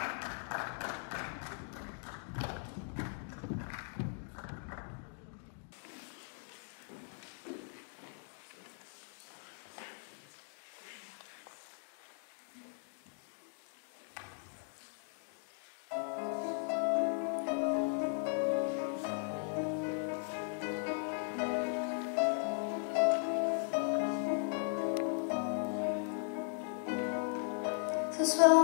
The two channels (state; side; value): silent; right; 52 dB below the other